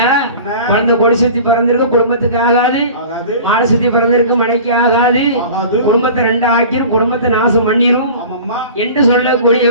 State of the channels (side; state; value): both; inverted; correlation -0.40